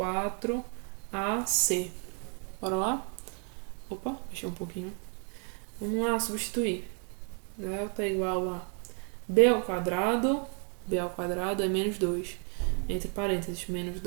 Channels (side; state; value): left; quieter; 39.8 dB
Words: Bora lá? Opa, mexer um pouquinho. Vamos lá, substituir. Delta igual a b ao quadrado é menos 2. Entre parênteses, menos